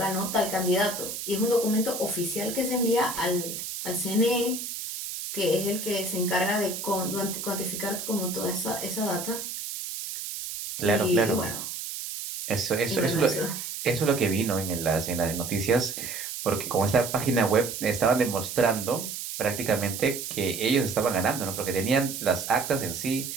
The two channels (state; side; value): noise; right; hiss, 6 dB below the sound